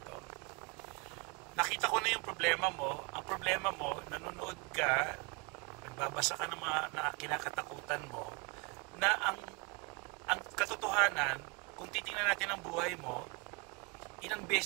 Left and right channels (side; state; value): left; quieter; 30.8 dB